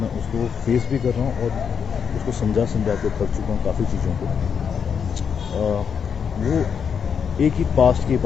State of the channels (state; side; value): quieter; right; 6.9 dB